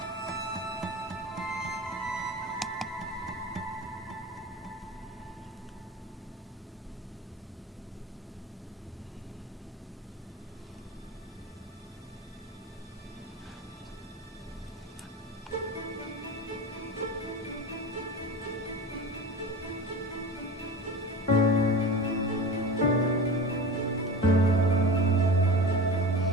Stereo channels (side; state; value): both; normal; correlation 0.32